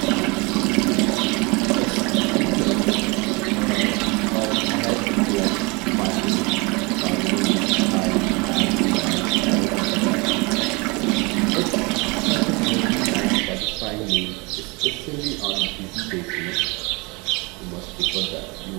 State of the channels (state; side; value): quieter; left; 27.7 dB